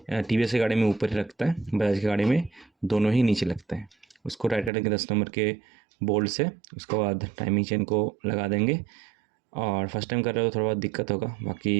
TVS की गाड़ी में ऊपर ही लगता है, बजाज की गाड़ी में दोनों ही नीचे लगते हैं। उसको टाइट करेंगे 10 नंबर के बोल्ट से। उसके बाद टाइमिंग चेन को लगा देंगे। और फर्स्ट टाइम कर रहे हो थोड़ा बहुत दिक्कत होगा,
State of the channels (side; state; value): left; drops out; at 4.7 s